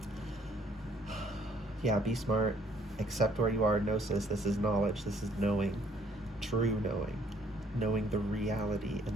Yeah, be smart. Accept where you are. Gnosis. This is knowledge. This is knowing. True knowing. Knowing the reality and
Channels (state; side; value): normal; both; correlation 0.62